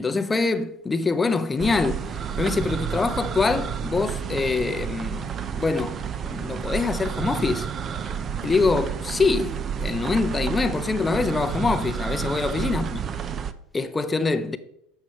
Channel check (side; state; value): both; normal; correlation 0.80